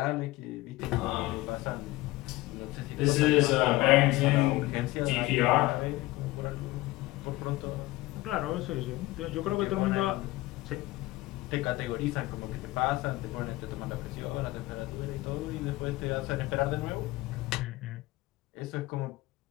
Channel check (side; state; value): right; quieter; 19.0 dB